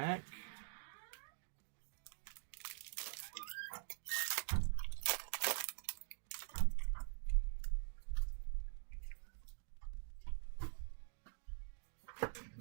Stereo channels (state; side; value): silent; left; digital silence